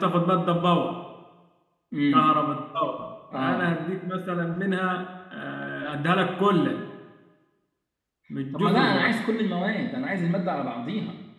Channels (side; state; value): both; identical; correlation 1.00